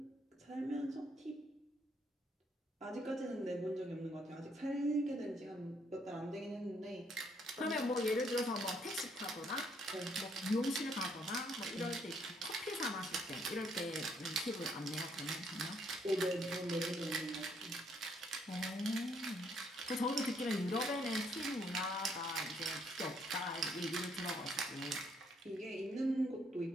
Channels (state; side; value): normal; both; correlation 0.69